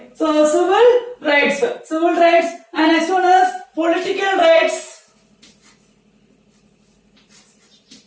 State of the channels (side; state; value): both; identical; correlation 1.00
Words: so civil rights, and next one is political rights,